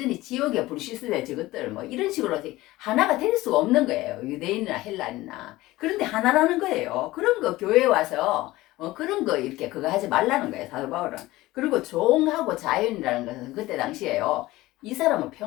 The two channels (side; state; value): right; quieter; 18.2 dB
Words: 지옥에 불시스대 저것들 뭐 이런 식으로 하나가 될 수가 없는 거예요. 유대인이나 헬라인이나. 그런데 하나라는 거예요. 그런 거 교회에 와서 그런 거 이렇게 그거 하지 말라는 거예요. 사도 바울은. 그리고 종하고 자연이라는 것은 그때 당시에요. 이 사람은